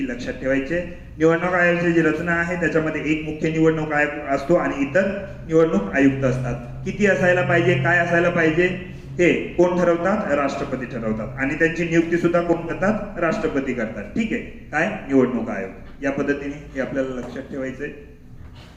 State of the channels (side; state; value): both; identical; correlation 1.00